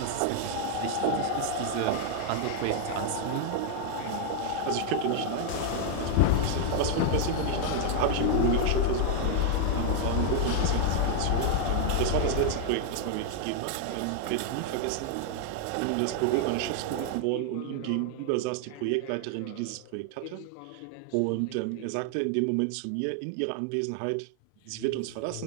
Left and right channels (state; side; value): different; both; correlation 0.00